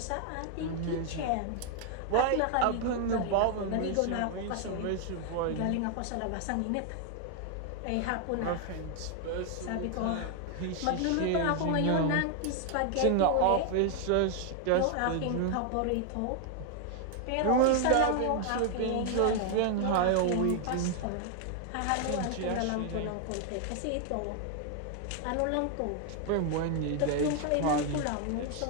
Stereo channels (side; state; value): both; different; correlation 0.00